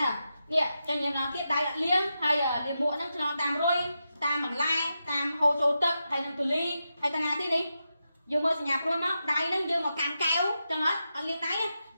្នឹងនេះចឹងយើងឡើងទៀតដៃអត់លាងហើយលាមកហ្នឹងឆ្លងតាមរុយតាមបន្លែតាមហូរចូលទឹកហើយនឹងទូលីហើយតាណាទៀតនេះយើងមើលសញ្ញាព្រួយមកដៃហ្នឹងយើងមកកាន់កែវចឹងអត់លាងដៃ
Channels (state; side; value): inverted; both; correlation -0.88